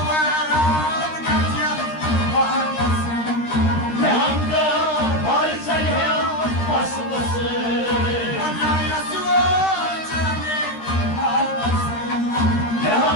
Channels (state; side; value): late; right; 13 ms